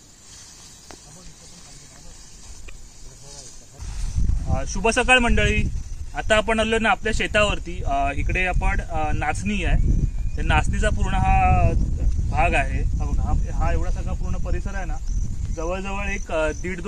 शुभ सकाळ मंडळी. आता आपण आलो ना आपल्या शेतावरती. इकडे आपण नाचणी आहे, त्या नाचणीचा पूर्ण हा भाग आहे. हा एवढा सगळा पूर्ण परिसर आहे ना, जवळजवळ एक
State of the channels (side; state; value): both; identical; correlation 1.00